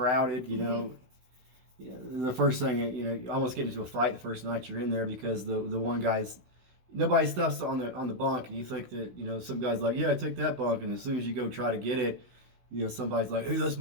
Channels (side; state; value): left; late; 16 ms